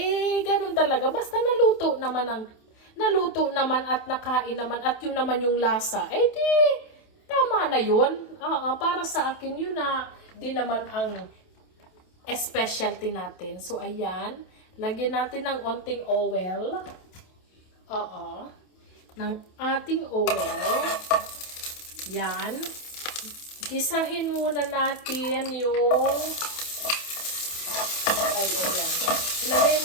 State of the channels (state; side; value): late; right; 28 ms